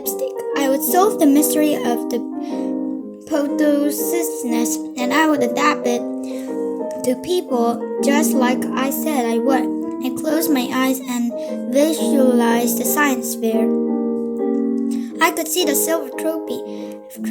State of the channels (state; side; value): identical; both; correlation 1.00